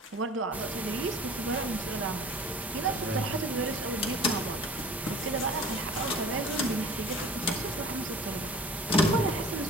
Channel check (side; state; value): both; normal; correlation 0.45